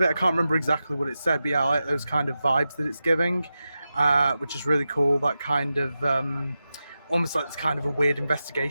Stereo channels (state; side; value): inverted; both; correlation -0.91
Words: it. I can't remember exactly what it said, but yeah, I like those kind of vibes that it's giving, which is really cool. That kind of almost like this kind of a weird